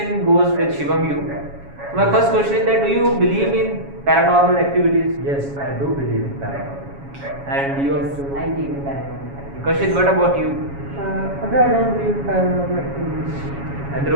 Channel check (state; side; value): late; left; 7.2 ms